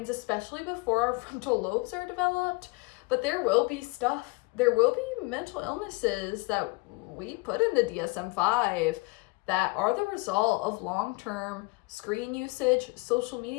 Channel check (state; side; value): quieter; right; 26.2 dB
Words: especially before our frontal lobes are developed. But there will be mental illnesses that we put in the DSM-5 that are the result of long-term screen usage, social